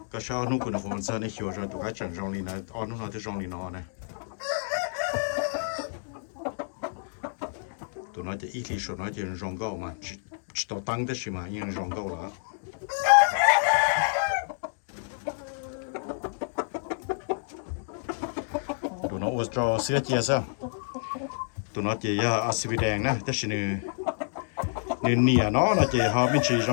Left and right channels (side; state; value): right; silent; digital silence